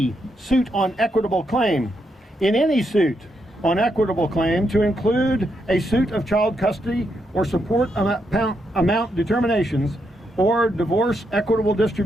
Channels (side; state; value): both; normal; correlation 0.80